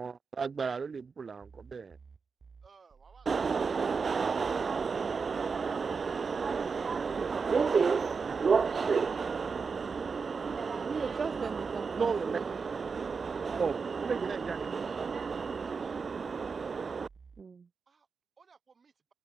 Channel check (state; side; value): quieter; left; 5.1 dB